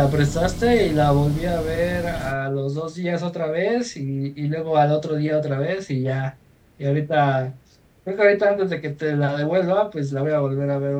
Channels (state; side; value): identical; both; correlation 1.00